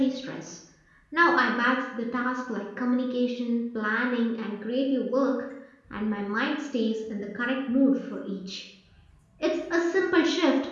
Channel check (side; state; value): both; identical; correlation 1.00